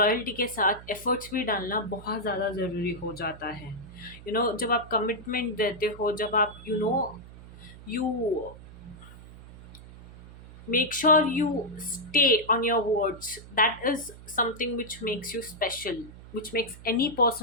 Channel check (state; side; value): noise; right; hum, 17 dB below the sound